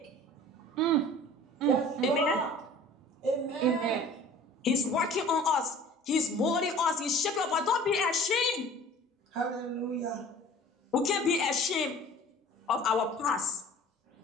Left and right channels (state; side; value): normal; both; correlation 0.46